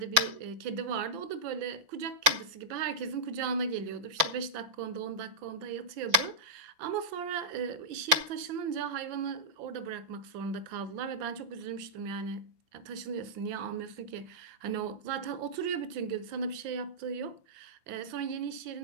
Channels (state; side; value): late; left; 6.0 ms